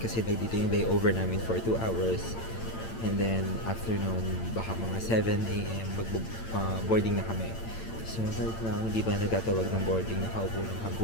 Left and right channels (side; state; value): right; late; 8.9 ms